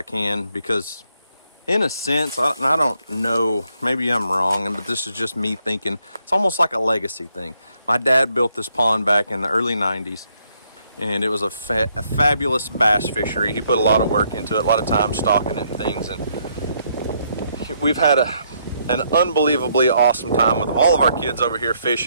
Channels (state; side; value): inverted; both; correlation -0.73